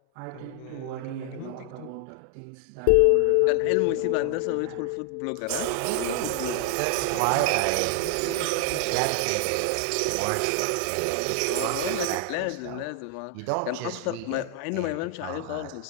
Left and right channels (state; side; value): different; both; correlation 0.00